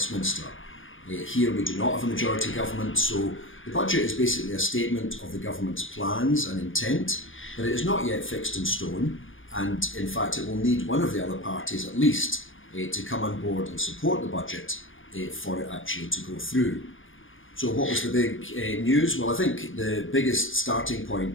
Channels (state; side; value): late; right; 0.58 ms